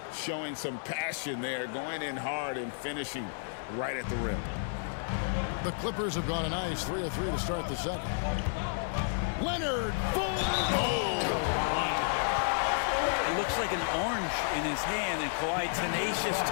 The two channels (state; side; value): silent; right; digital silence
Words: showing some passion there, going in hard and finishing right at the rim. The Clippers have gone a nice 3 of 3 to start the second. Leonard, full It looks like an orange in his hand, and Kawhi tenacious